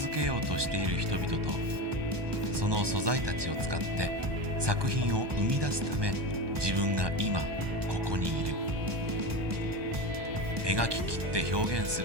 けようとしている人々と、その素材たちを使って作品を生み出すため自分が今ここにいる。描き切って表現す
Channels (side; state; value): left; late; 1.2 ms